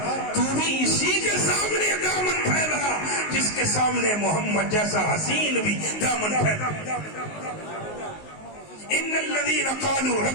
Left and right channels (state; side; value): late; right; 19 ms